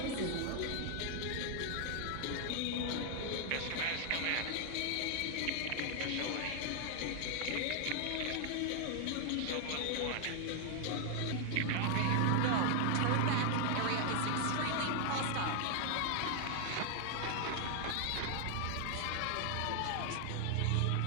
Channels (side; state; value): both; different; correlation 0.00